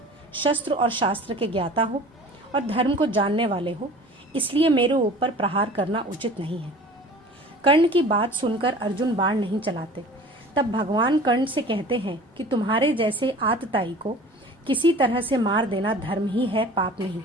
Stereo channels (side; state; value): both; normal; correlation 0.43